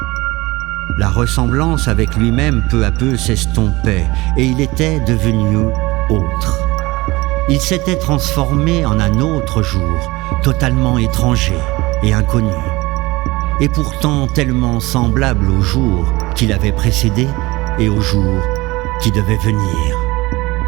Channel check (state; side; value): quieter; left; 21.4 dB